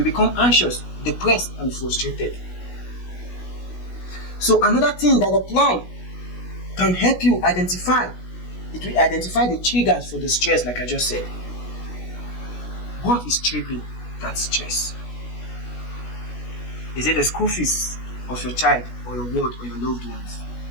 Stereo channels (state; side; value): late; right; 16 ms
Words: become anxious, depressed, and frustrated. So another thing that a plan can help you identify, it will identify the triggers for the stress, like I just said. What is triggering that stress? Is it the school fees of your child or your ward or your loved ones?